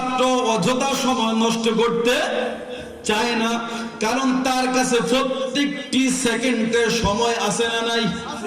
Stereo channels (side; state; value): both; identical; correlation 1.00